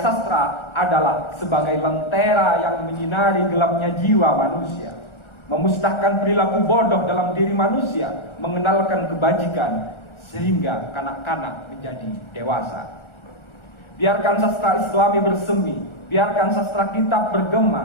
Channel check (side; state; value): right; late; 1.4 ms